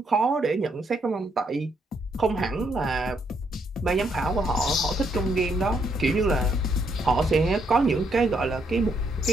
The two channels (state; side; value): normal; both; correlation 0.74